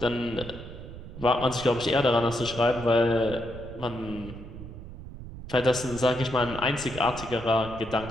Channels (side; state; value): right; noise; rumble, 12 dB below the sound